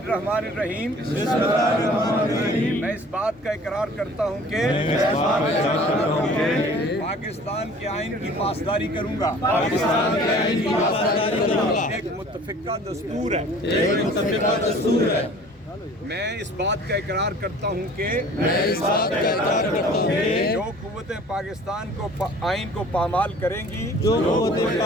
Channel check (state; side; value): normal; both; correlation 0.48